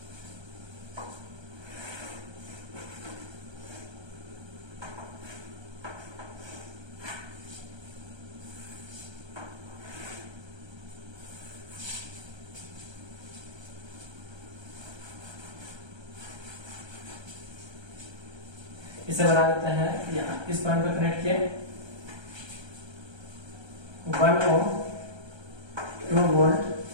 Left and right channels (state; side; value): late; left; 1.3 ms